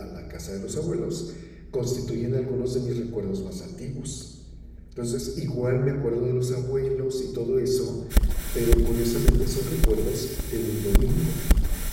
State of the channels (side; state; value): both; identical; correlation 1.00